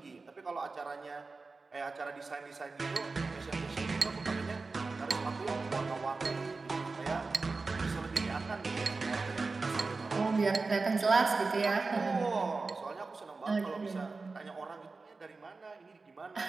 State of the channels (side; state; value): left; quieter; 3.9 dB